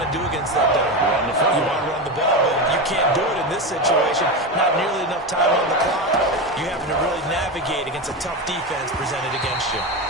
to do against that dime? Run the football. You want to run the ball, but you can't do it in this situation. Not nearly enough time on the clock. You having to really navigate against a tough defense presented against you.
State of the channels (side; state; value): both; normal; correlation 0.18